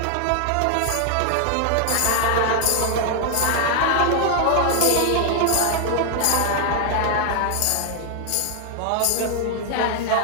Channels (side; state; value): both; different; correlation 0.00